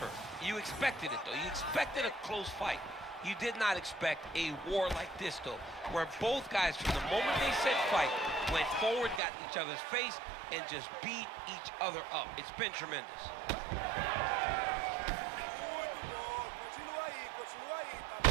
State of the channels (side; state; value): left; drops out; at 9.2 s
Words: You expected it, though. You expected a close fight. You did not expect a war like this, though, where both guys, from the moment they said fight, went forward, got in each other's face, and just beat each other up. It's been tremendous.